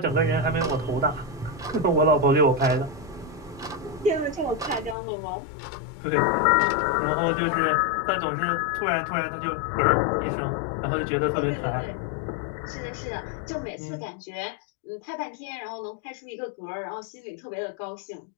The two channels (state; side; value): drops out; right; at 5.0 s